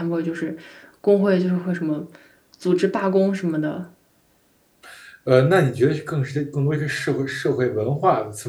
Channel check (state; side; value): identical; both; correlation 1.00